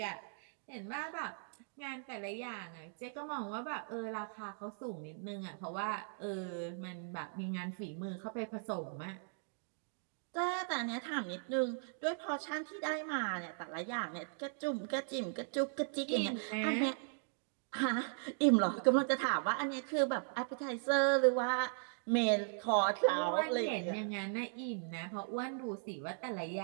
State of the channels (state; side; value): silent; left; digital silence